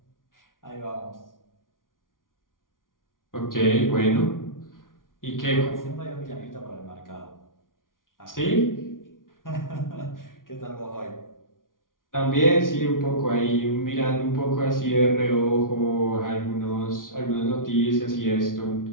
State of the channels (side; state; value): right; late; 0.89 ms